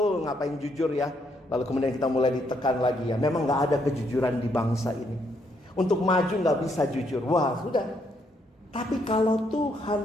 ngapain jujur ya? Lalu kemudian kita mulai ditekan lagi ya. Memang gak ada kejujuran di bangsa ini. Untuk maju gak bisa jujur. Wah, sudah. Tapi kalau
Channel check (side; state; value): both; normal; correlation 0.73